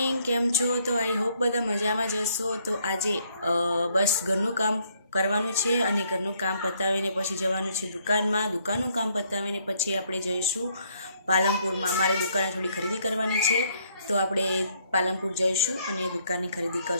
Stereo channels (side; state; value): both; inverted; correlation -0.69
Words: કેમ છો? તો આઈ હોપ બધા મજામાં જ હશો. તો આજે બસ ઘરનું કામ કરવાનું છે અને ઘરનું કામ પતાવીને પછી જવાનું છે દુકાનમાં. દુકાનનું કામ પતાવીને પછી આપણે જઈશું પાલનપુરમાં. મારી દુકાને થોડી ખરીદી કરવાની છે, તો આપણે પાલનપુર જઈશું અને દુકાનની ખરીદી